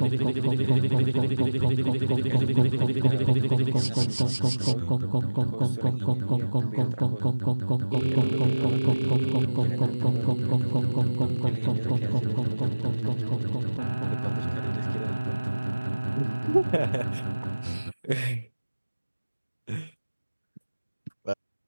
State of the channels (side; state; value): both; inverted; correlation -1.00